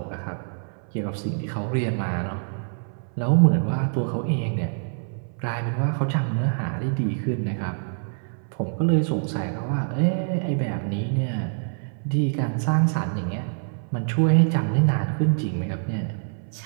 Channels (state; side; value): silent; left; 62 dB below the other